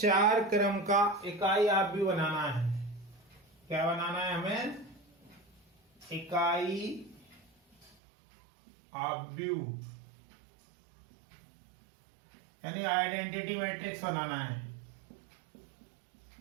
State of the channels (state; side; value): drops out; left; at 8.0 s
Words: क्रम का इकाई आप भी बनाना है। क्या बनाना है हमें? इकाई आव्यूह यानी आइडेंटिटी मैट्रिक्स बनाना है।